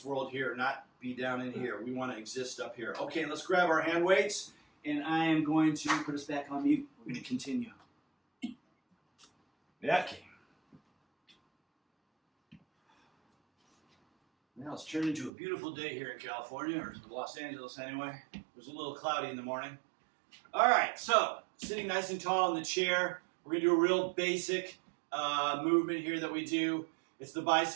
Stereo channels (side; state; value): left; drops out; at 15.3 s